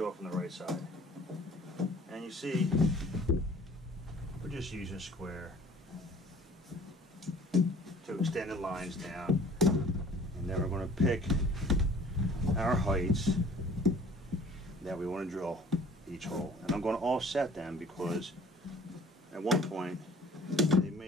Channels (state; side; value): normal; both; correlation 0.52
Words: the right side. And you see, we're just using a square to extend the lines down. And then we're going to pick our heights that we want to drill each hole. And I'm going to offset them because at one point they